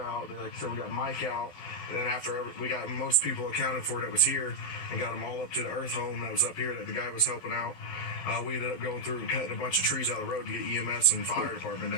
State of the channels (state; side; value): late; right; 12 ms